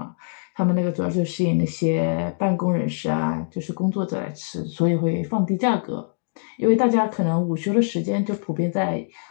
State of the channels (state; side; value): silent; right; digital silence